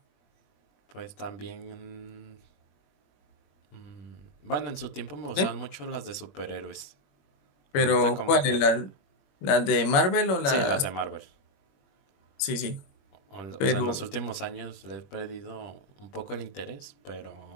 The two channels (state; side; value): late; right; 21 ms